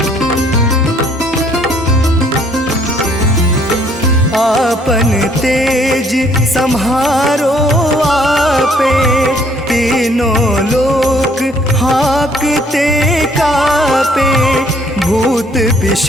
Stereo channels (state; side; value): normal; both; correlation 0.63